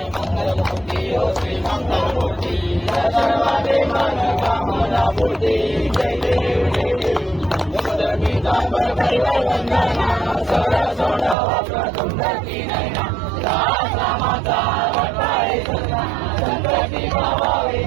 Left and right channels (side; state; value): left; drops out; at 11.4 s